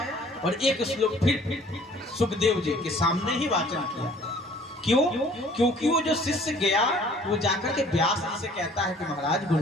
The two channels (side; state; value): both; normal; correlation 0.54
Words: और एक श्लोक फिर सुखदेव जी के सामने ही वाचन किया। क्यों? क्योंकि वो जो शिष्य गया वो जाकर के व्यास जी से कहता है कि महाराज